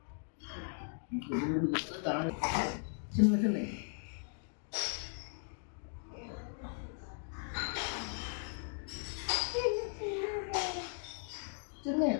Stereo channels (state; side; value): silent; right; 53 dB below the other